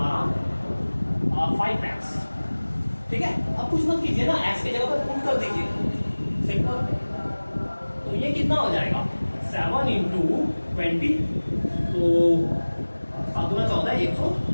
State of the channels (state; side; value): inverted; both; correlation -1.00